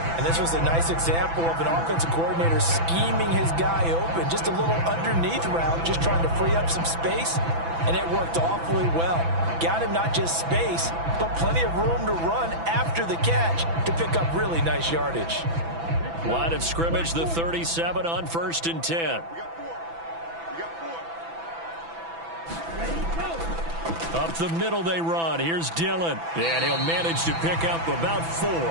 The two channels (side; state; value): left; late; 6.0 ms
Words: And this was a nice example of an offensive coordinator scheming his guy open. Just a little underneath route, just trying to free up some space, and it worked awfully well. Got him not just space, but plenty of room to run after the catch to pick up really nice yardage. Line of scrimmage, the 37 on 1st and 10. Up the middle they run. Here's Dillon. And he'll manage to pick up about